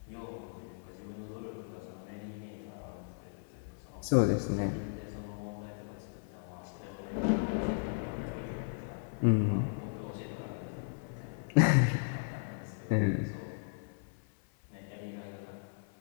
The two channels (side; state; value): right; silent; 54 dB below the other